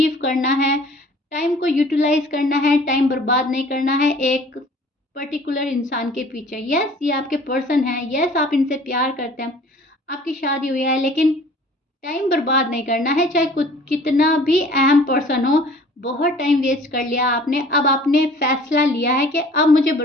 करना है, टाइम को यूटिलाइज करना है, टाइम बर्बाद नहीं करना है एक पर्टिकुलर इंसान के पीछे। यस, ये आपके पर्सन है, यस आप इनसे प्यार करते हैं, आपकी शादी हुई है, लेकिन टाइम बर्बाद नहीं करना है, चाहे कुछ कितना भी अहम पर्सन हो। बहुत टाइम वेस्ट कर लिया आपने, अब आपने फैसला लिया है कि अब मुझे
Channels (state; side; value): normal; both; correlation 0.50